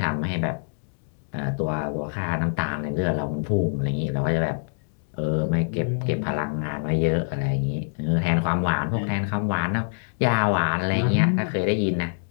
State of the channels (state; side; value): silent; right; digital silence